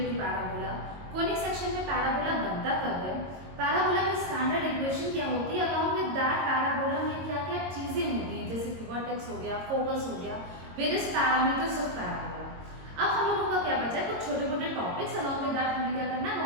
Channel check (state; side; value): late; left; 22 ms